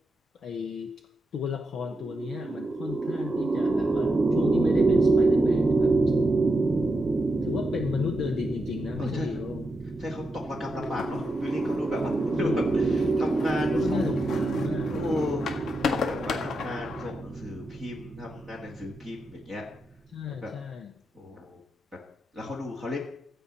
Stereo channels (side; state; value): both; normal; correlation 0.86